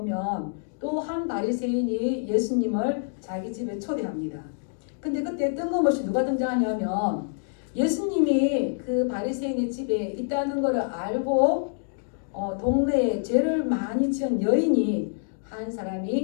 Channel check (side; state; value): right; silent; digital silence